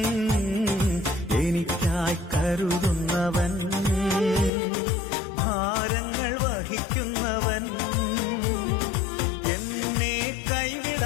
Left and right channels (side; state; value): right; drops out; at 4.5 s